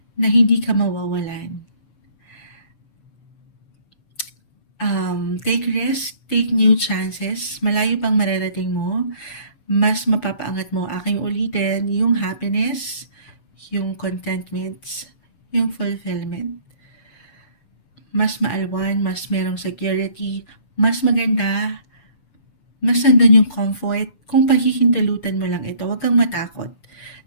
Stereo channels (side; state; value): right; late; 6.8 ms